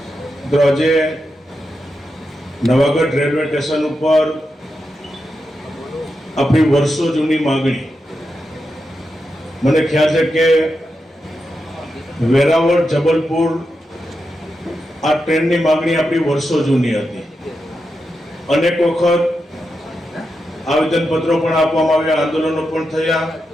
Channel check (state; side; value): normal; both; correlation 0.87